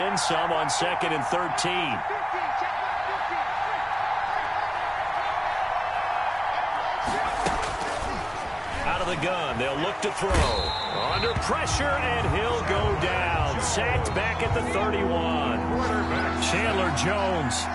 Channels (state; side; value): identical; both; correlation 1.00